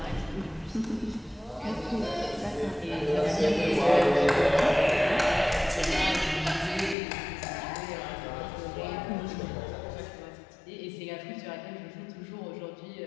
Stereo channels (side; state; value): right; drops out; at 7.0 s